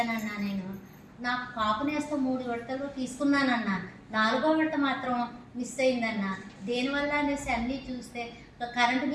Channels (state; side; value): identical; both; correlation 1.00